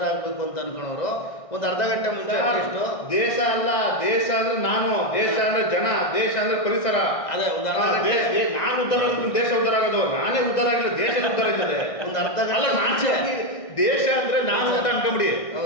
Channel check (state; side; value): late; right; 1.6 ms